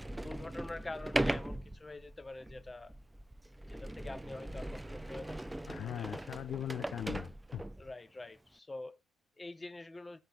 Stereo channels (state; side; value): normal; both; correlation 0.92